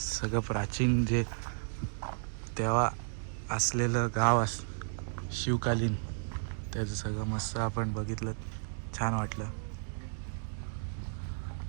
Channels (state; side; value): silent; left; digital silence